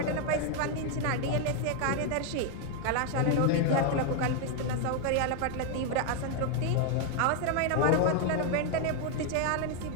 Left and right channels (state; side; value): different; both; correlation 0.01